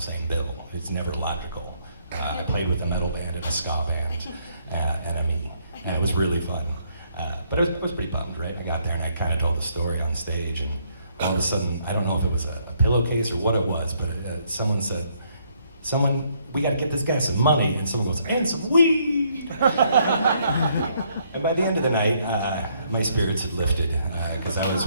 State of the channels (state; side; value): inverted; both; correlation -0.70